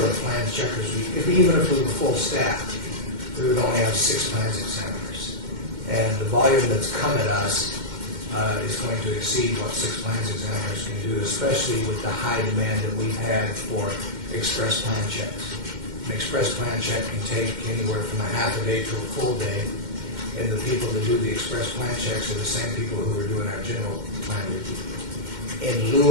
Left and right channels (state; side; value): late; left; 2.1 ms